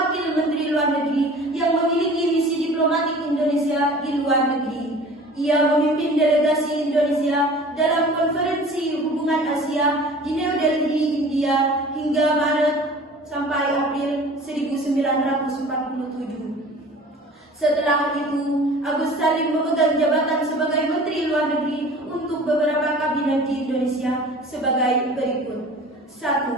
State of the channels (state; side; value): normal; both; correlation 0.44